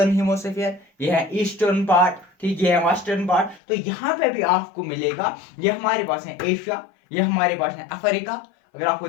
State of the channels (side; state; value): right; drops out; at 3.6 s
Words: हेमिस्फीयर, ये है ईस्टर्न पार्ट, ठीक, ये है वेस्टर्न पार्ट। तो यहाँ पे भी आपको मिलेगा, ये हमारे पास है एशिया, ये हमारे पास है अफ्रीका, अगर आपको